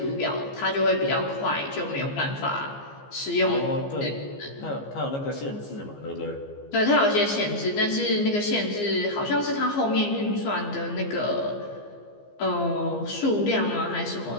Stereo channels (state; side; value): late; right; 15 ms